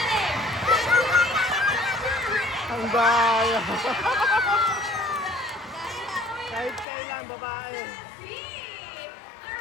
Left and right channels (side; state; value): right; drops out; at 6.9 s